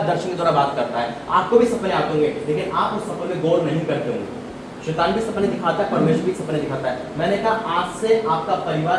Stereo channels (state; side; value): identical; both; correlation 1.00